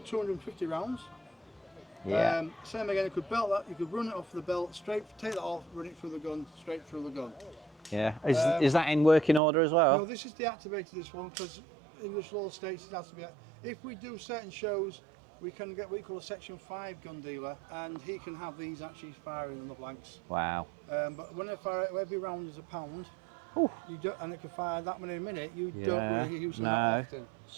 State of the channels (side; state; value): left; drops out; at 9.4 s